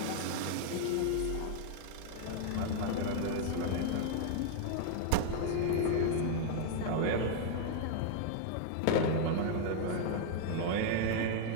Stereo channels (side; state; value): both; different; correlation -0.01